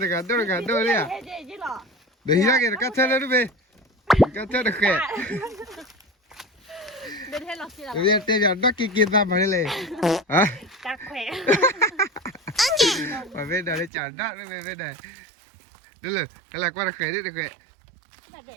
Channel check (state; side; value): drops out; left; at 13.9 s